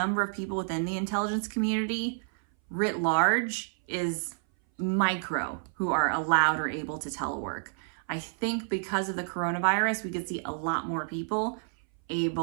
of people within the intelligence community writ large is micro who are allowed or able to telework. I think because of the coronavirus, we could see a lot more people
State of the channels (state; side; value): silent; left; 58 dB below the other